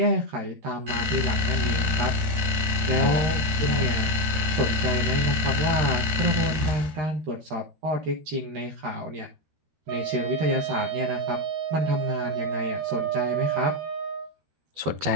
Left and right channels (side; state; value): left; late; 13 ms